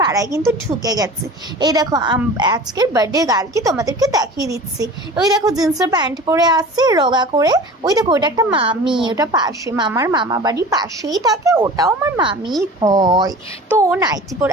পাড়ায় কিন্তু ঢুকে গেছে। এই দেখো আজকের বার্থডে গার্লকে তোমাদেরকে দেখিয়ে দিচ্ছি। ওই দেখো জিন্সের প্যান্ট পরে আসছে রোগা করে, ওই দেখো ওটা একটা মামি, ওটা পাশে মামার মামা বাড়ির পাশেই থাকে, ওটাও আমার মামি হয়। তো ও নাইটি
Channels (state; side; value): normal; both; correlation 0.39